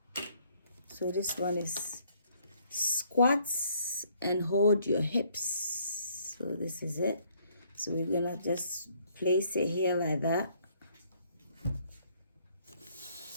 So this one is squats and hold your hips. So this is it. So we're gonna just place it here like that.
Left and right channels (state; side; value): inverted; both; correlation -0.65